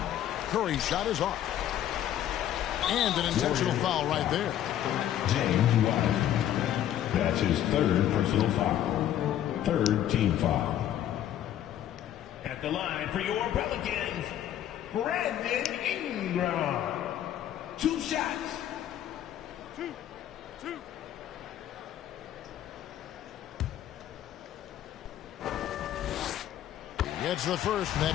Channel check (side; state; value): right; quieter; 11.4 dB